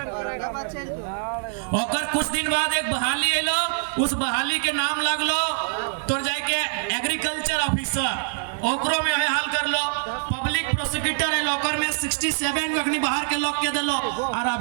ओकर कुछ दिन बाद एक बहाली एलो, उस बहाली के नाम लगलो तो जाके एग्रीकल्चर ऑफिसर, ओकरो में हाल कर लो। पब्लिक प्रोसिक्यूटर है, ओकर में 67 को अपनी बाहर के लोग के दिलो। और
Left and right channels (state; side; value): silent; left; digital silence